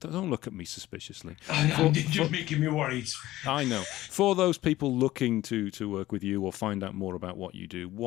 look at me suspiciously. You're making me worried. I know. For those people looking to work with you or find out more about what you do,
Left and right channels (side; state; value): right; quieter; 15.8 dB